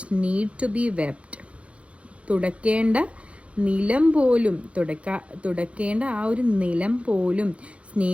need to be swept. തുടക്കേണ്ട നിലം പോലും തുടക്കേണ്ട ആ ഒരു നിലം പോലും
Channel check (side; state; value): left; late; 0.062 ms